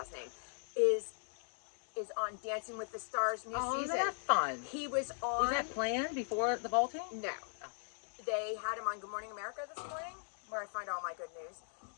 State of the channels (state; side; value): silent; right; 52 dB below the other